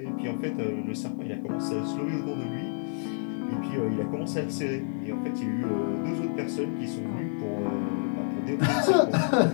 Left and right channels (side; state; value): right; silent; digital silence